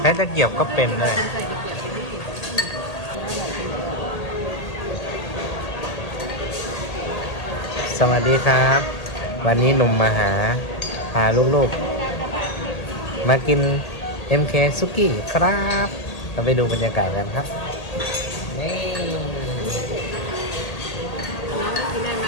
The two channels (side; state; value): right; late; 1.8 ms